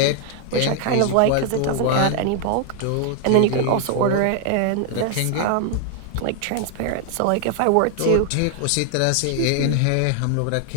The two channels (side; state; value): both; different; correlation 0.00